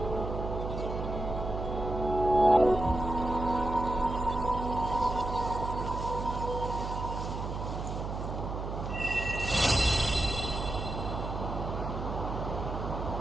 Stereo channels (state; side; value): noise; right; hum, 5 dB below the sound